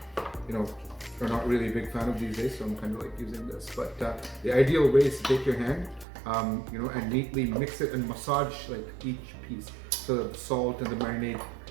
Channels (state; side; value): drops out; left; at 6.1 s